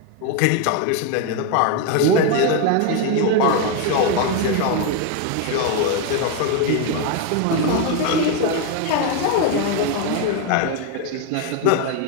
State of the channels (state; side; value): different; both; correlation 0.01